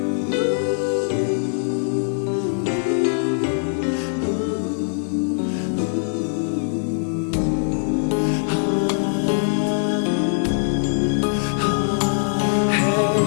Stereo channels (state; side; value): silent; right; digital silence